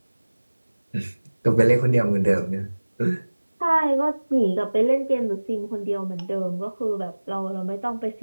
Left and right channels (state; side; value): inverted; both; correlation -1.00